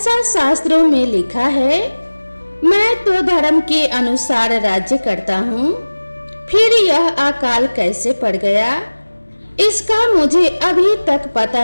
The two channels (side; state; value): both; inverted; correlation -1.00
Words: शास्त्रों में लिखा है। मैं तो धर्म के अनुसार राज्य करता हूँ, फिर यह अकाल कैसे पड़ गया, इसका मुझे अभी तक पता